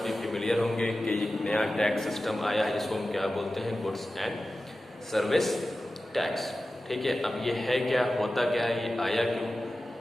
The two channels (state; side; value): normal; both; correlation 0.94